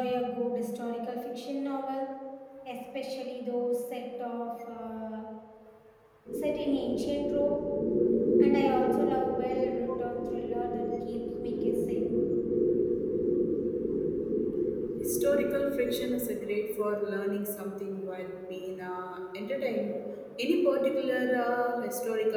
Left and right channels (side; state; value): both; identical; correlation 1.00